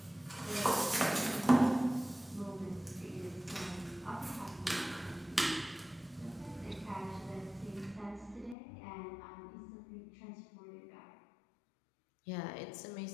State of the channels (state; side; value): drops out; right; at 8.6 s